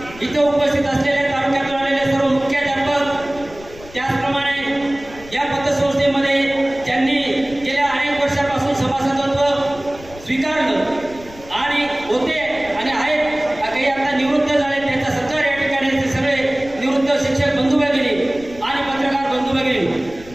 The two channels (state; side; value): noise; left; rumble, 19 dB below the sound